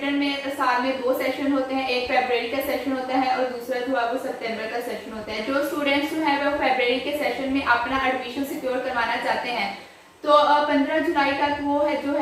में साल में 2 सेशन होते हैं, एक फरवरी का सेशन होता है और दूसरा जो है वो सितंबर का सेशन होता है। जो स्टूडेंट्स जो है वो फरवरी के सेशन में अपना एडमिशन सिक्योर करवाना चाहते हैं तो 15 जुलाई तक वो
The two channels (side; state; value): both; identical; correlation 1.00